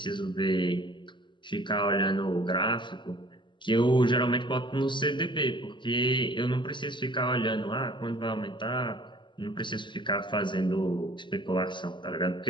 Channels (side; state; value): right; late; 0.23 ms